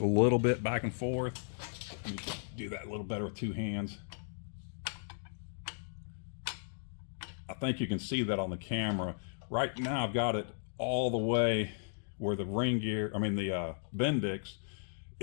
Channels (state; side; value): silent; right; digital silence